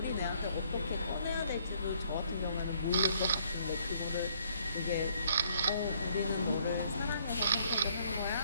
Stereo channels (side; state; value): both; inverted; correlation -0.66